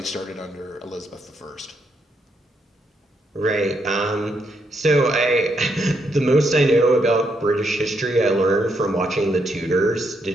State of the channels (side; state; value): both; normal; correlation 0.77